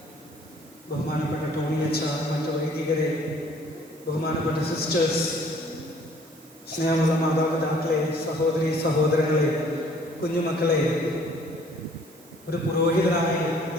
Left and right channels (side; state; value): right; noise; hiss, 25 dB below the sound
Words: ബഹുമാനപ്പെട്ട ടോണി അച്ഛ, മറ്റു വൈദികരെ, ബഹുമാനപ്പെട്ട സിസ്റ്റേഴ്സ്, സ്നേഹമുള്ള മാതാപിതാക്കളെ, സഹോദരി സഹോദരങ്ങളെ, കുഞ്ഞുമക്കളെ, ഒരു പുരോഹിതനായി